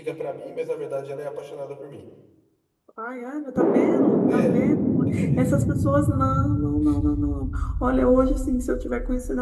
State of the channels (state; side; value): identical; both; correlation 1.00